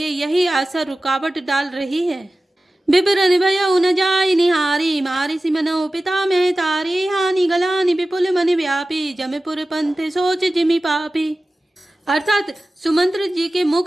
यही आशा रुकावट डाल रही है। बिबरन भयउ न जाय निहारी, मारी सिमनो पिता में तारी, हानि गलानि विपुल मन व्यापी, जमपुर पंथ सोच जिमि पापी। अर्थात सुमंत्र जी के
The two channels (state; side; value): normal; both; correlation 0.96